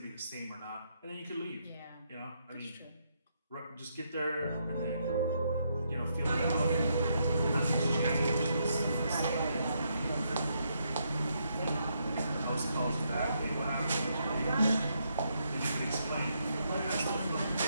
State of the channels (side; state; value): both; inverted; correlation -0.77